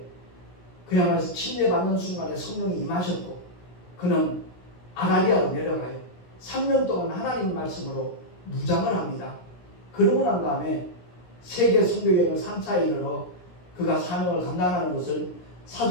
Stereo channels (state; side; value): late; right; 17 ms